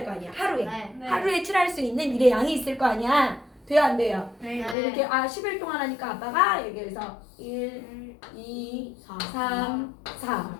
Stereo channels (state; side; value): drops out; right; at 4.8 s